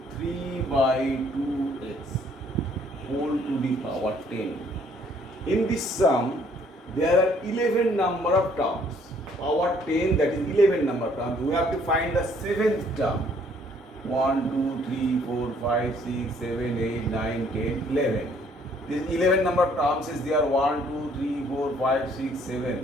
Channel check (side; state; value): both; normal; correlation 0.62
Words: 3 by 2x whole to the power 10. In this sum, there are 11 number of terms. Power 10, that is 11 number of terms. We have to find the seventh term. 1, 2, 3, 4, 5, 6, 7, 8, 9, 10, 11. This 11 number of terms is there. 1, 2, 3, 4, 5, 6,